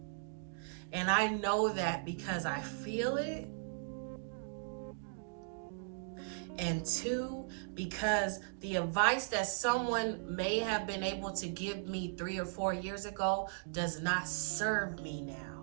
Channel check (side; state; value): left; silent; digital silence